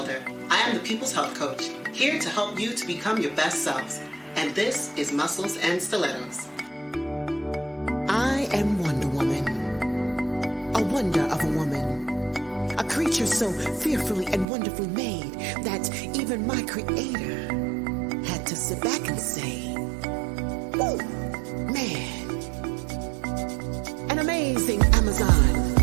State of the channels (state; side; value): drops out; left; at 14.5 s